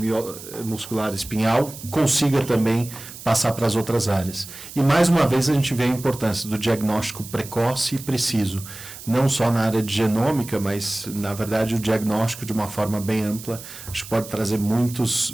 muscular espinhal, consiga também passar para as outras áreas. E mais uma vez a gente vê a importância do diagnóstico precoce e preciso, não só na área de genômica, mas na verdade o diagnóstico de uma forma bem ampla, acho que pode trazer muitos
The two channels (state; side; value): noise; right; hiss, 14 dB below the sound